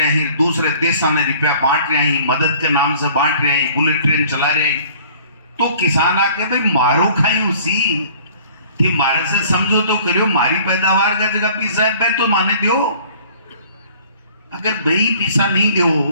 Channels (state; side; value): inverted; both; correlation -0.51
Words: हैं, दूसरे देशों में रुपया बांट रहे हैं, मदद के नाम से बांट रहे हैं, बुलेट ट्रेन चला रहे हैं। तो किसान आके भाई मारो खाई उसी थी, मारे से समझो तो करियो, मारी पैदावार का जगह पीसा है तो माने दियो। अगर भाई पीसा नहीं